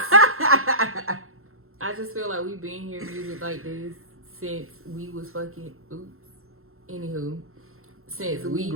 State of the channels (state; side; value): late; left; 0.62 ms